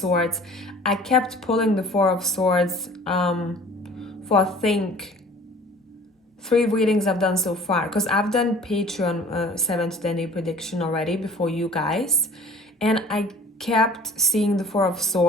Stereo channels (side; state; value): both; normal; correlation 0.47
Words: I kept pulling the 4 of Swords for, I think, 3 readings I've done so far. Because I've done Patreon 7th to 10 day prediction already before you guys. And I kept seeing the 4 of